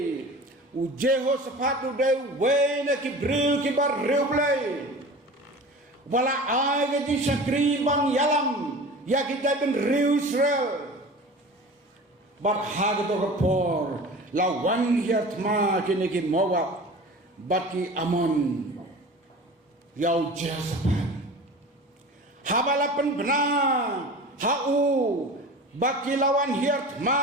u Jehoshaphat u de wena ki briu ki bar riu blay wala ai ga di sakri bang yalam ya ki ben riu Israel bar hagato ka por lawan hiat ma kini ki Moab baki Amon yau Jehoshaphat habalapan benar hau baki lawan hiat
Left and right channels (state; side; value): normal; both; correlation 0.37